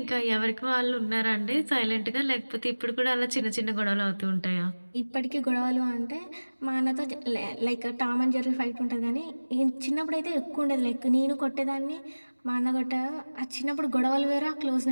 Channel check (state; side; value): inverted; both; correlation -1.00